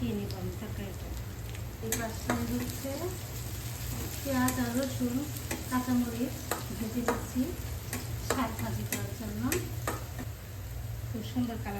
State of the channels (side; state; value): both; identical; correlation 1.00